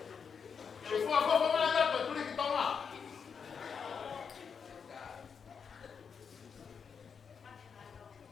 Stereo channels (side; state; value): right; quieter; 6.4 dB